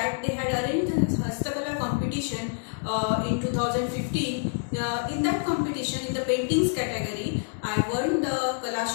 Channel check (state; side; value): silent; right; 60 dB below the other